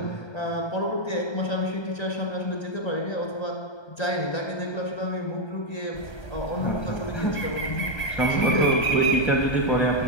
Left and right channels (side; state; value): right; late; 1.3 ms